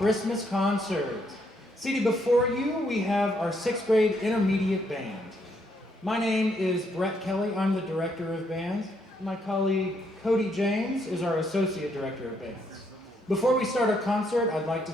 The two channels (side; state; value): both; normal; correlation 0.73